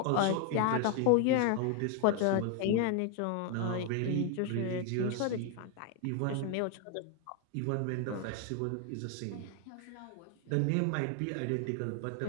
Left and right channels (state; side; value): different; both; correlation 0.01